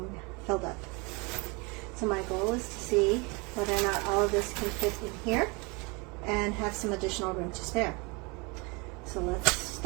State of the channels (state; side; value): quieter; left; 28.9 dB